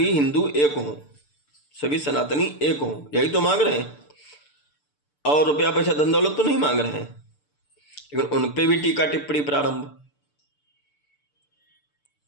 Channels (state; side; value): late; right; 6.8 ms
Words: हिंदू एक हों, सभी सनातनी एक हों, यही तो मांग रहे हैं। और रुपया पैसा धन दौलत तो नहीं मांग रहे हैं। लेकिन उन पे भी टीका टिप्पणी प्रारंभ।